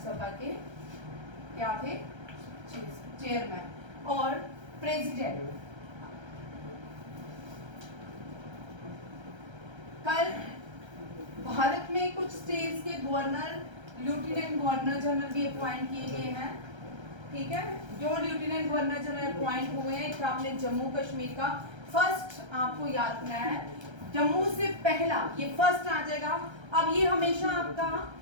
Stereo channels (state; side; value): late; left; 1.3 ms